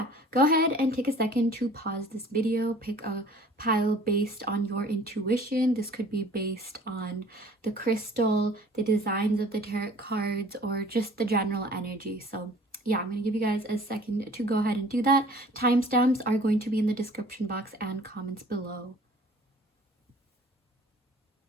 go ahead and take a second to pause this video, pick a pile based on your intuition. This could be based on the crystal, the designs of the tarot cards, or just the general energy. So yeah, I'm going to give you guys a second to go ahead and do that. Timestamps are going to be in the description box and comments below.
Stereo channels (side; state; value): both; normal; correlation 0.50